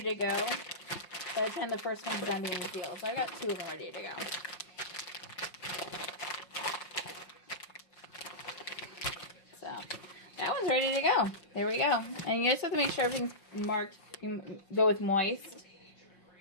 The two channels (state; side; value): late; right; 5.6 ms